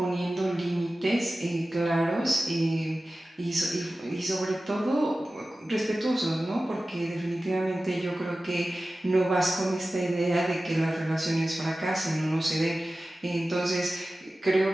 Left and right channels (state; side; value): normal; both; correlation 0.95